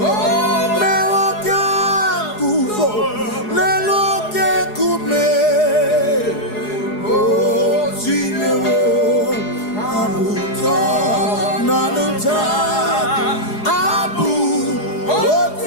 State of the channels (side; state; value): right; late; 4.8 ms